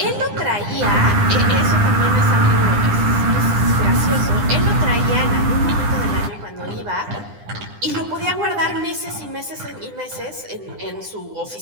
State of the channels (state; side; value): late; left; 9.9 ms